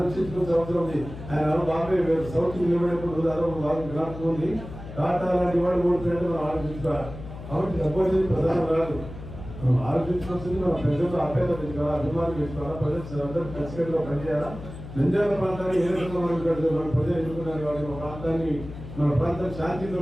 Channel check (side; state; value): left; noise; hum, 12 dB below the sound